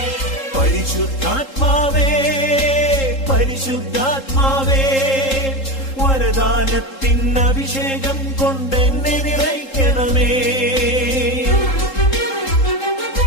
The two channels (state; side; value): late; right; 3.7 ms